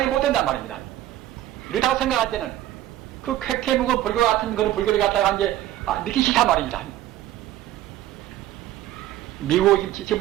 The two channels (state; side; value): quieter; left; 13.8 dB